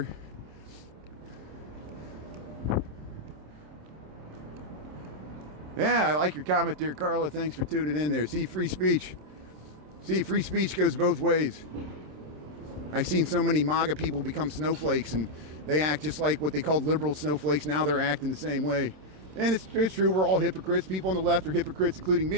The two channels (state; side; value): late; left; 27 ms